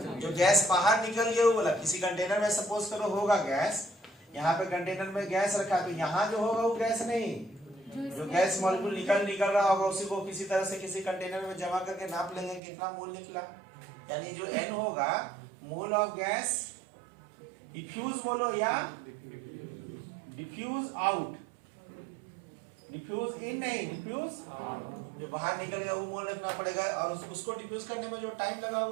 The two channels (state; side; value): drops out; left; at 12.6 s